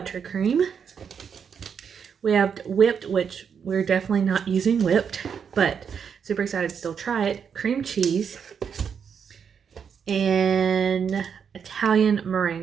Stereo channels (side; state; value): left; quieter; 7.0 dB